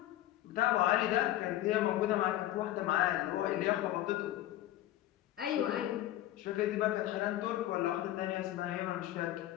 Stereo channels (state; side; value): quieter; right; 14.0 dB